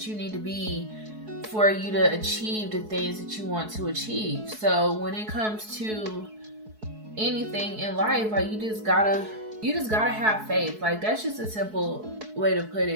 you need to be for you to achieve the things that you want to achieve. So when it comes to anything in life, like, you just gotta have faith. Like, that's just a simple way to put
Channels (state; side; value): late; left; 4.7 ms